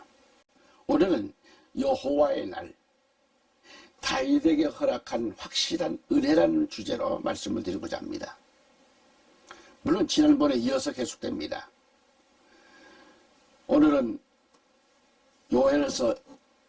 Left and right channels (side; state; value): both; identical; correlation 1.00